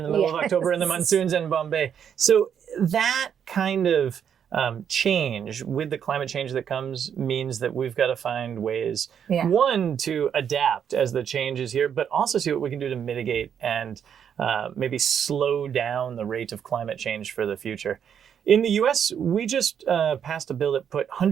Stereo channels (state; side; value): quieter; left; 8.2 dB